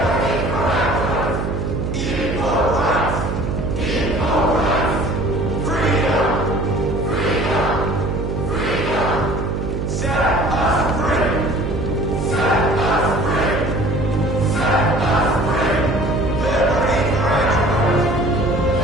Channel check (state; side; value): noise; right; hum, 2 dB below the sound